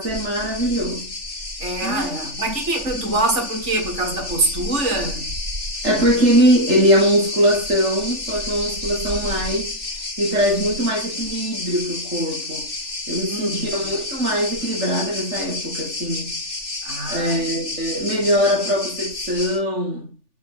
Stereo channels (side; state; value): left; late; 3.4 ms